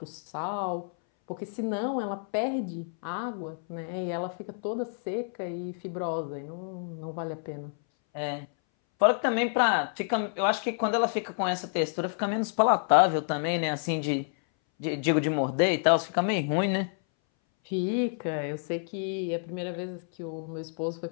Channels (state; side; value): silent; right; 59 dB below the other